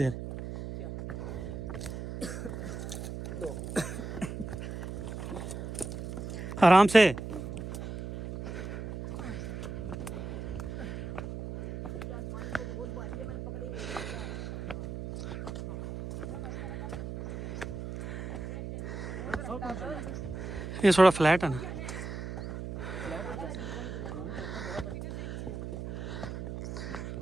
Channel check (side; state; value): right; noise; hum, 6 dB below the sound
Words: आराम से। ये थोड़ा फ्लैट है ना।